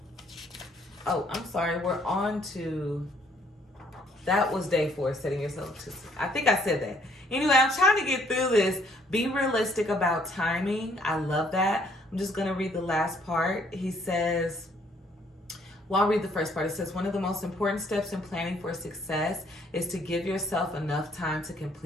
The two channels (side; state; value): both; normal; correlation 0.65